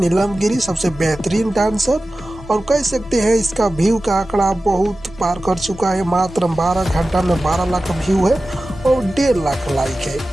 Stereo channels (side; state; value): both; normal; correlation 0.95